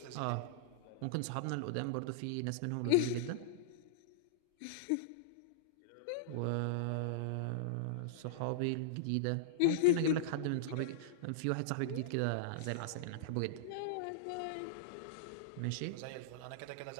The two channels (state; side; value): different; both; correlation -0.02